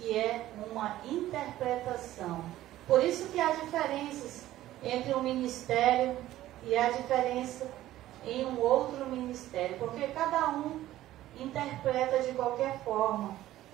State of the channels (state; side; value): quieter; left; 14.5 dB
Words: é uma interpretação. Por isso que há diferenças entre um ministério e há diferença em um outro ministério, porque cada um interpreta de qualquer forma,